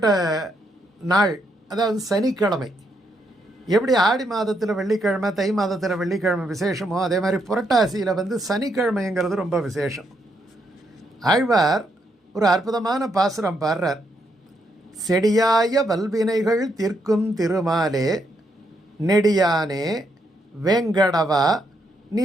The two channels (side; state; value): both; normal; correlation 0.77